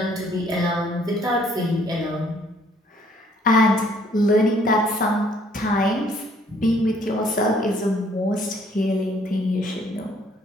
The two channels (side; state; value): both; normal; correlation 0.62